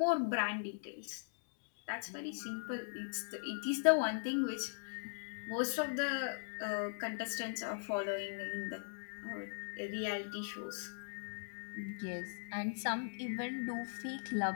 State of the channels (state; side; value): silent; right; digital silence